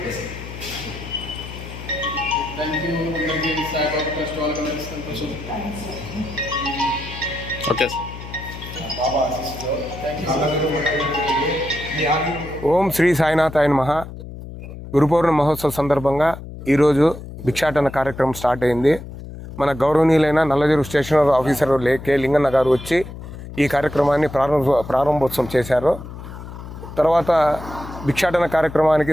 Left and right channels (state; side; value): noise; left; hum, 12 dB below the sound